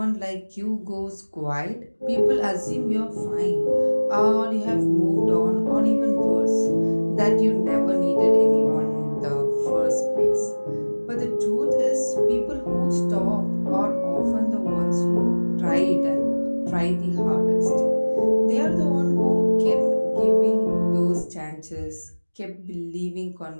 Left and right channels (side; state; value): both; inverted; correlation -1.00